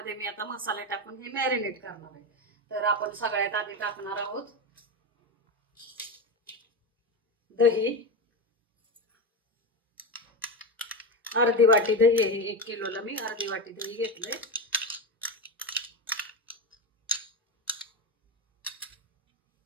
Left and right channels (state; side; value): normal; both; correlation 0.16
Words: मी आता मसाले टाकून हे मॅरिनेट करणार आहे। तर आपण सगळ्यात आधी टाकणार आहोत दही, अर्धी वाटी दही आहे। 1 किलोला मी अर्धी वाटी दही घेतलंय।